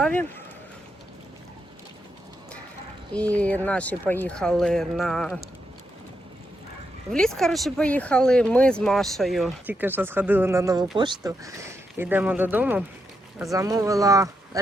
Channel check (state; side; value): normal; both; correlation 0.83